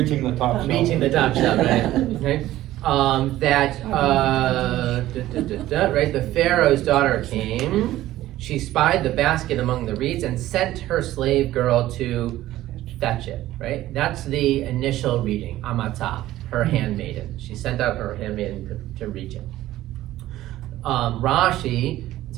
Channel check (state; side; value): quieter; left; 14.9 dB